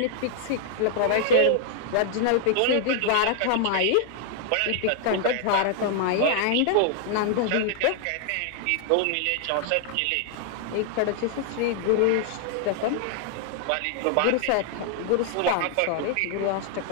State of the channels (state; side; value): different; both; correlation -0.01